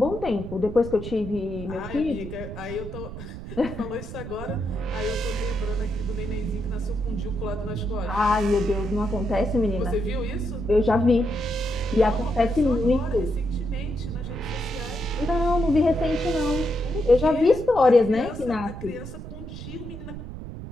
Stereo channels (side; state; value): right; noise; rumble, 10 dB below the sound